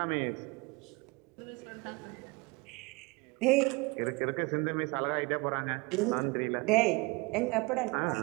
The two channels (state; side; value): quieter; left; 26.4 dB